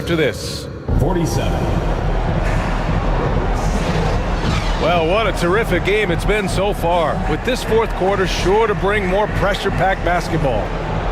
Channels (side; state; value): both; identical; correlation 1.00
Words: this. 47. Well, what a terrific game it's been so far, with this fourth quarter sure to bring more pressure-packed basketball.